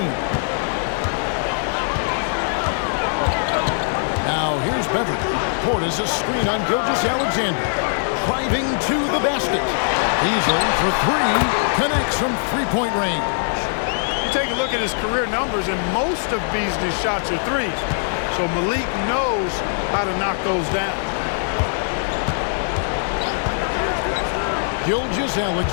Now here's Beverly. Portis a screen on Gilgeous-Alexander. Driving to the basket. Beasley for three. Connects from three-point range. You take a look at his career numbers, and most of Beasley's shots are threes. So Malik knows how to knock those down.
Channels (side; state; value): right; silent; 65 dB below the other